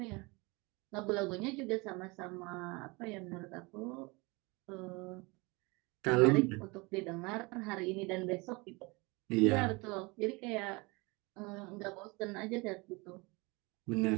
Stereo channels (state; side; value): quieter; left; 26.2 dB